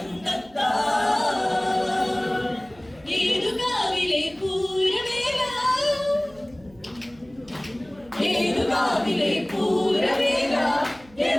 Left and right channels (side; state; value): right; noise; hum, 26 dB below the sound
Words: തത്താ ഏതുകാവിലെ പൂരവേല ഏതുകാവിലെ പൂരവേല